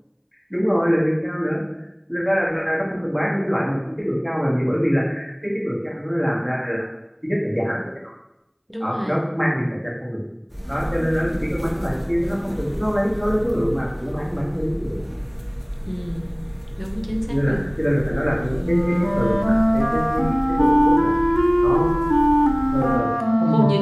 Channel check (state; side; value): identical; both; correlation 1.00